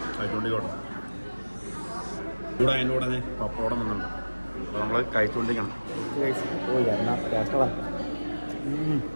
കഴിച്ചുകൊണ്ടിരിക്കണം. കൂടെ അതിൻ്റെ കൂടെ തന്നെ പപ്പടം വന്നിട്ടുണ്ട്. അപ്പോൾ നമ്മൾ കഴിച്ചുകൊണ്ടിരിക്കണം. ഓ എന്നാ ടേസ്റ്റാണ്.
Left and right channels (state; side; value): inverted; both; correlation -1.00